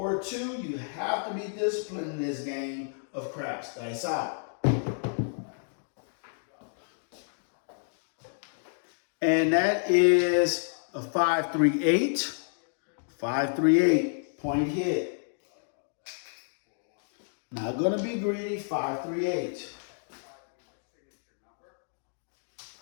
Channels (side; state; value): right; silent; digital silence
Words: 2. You have to be disciplined in this game of craps. Dice out. And that is a 5, 3, 8. 5, 3, 8. Point hit. Not gonna be greedy. 5, 3, 8.